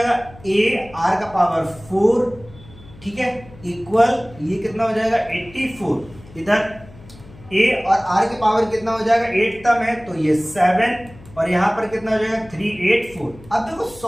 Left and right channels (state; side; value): noise; left; hum, 21 dB below the sound